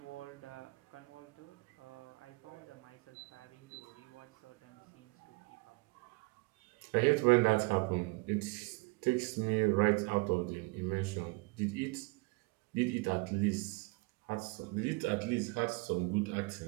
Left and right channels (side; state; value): left; quieter; 27.5 dB